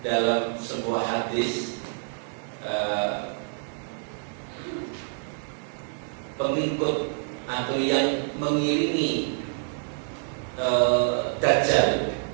dalam sebuah hadis pengikut atau yang mengiringi Dajjal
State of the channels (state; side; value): silent; left; 60 dB below the other